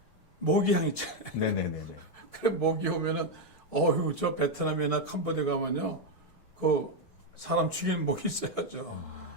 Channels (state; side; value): late; right; 5.0 ms